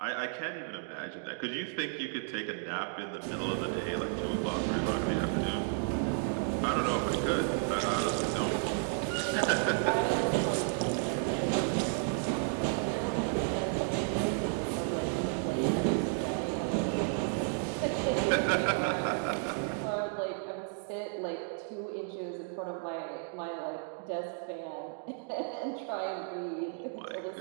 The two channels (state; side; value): silent; left; 56 dB below the other